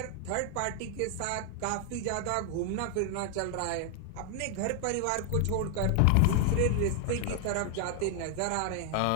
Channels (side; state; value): both; different; correlation 0.00